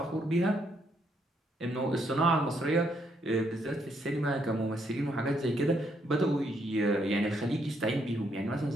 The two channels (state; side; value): normal; both; correlation 0.73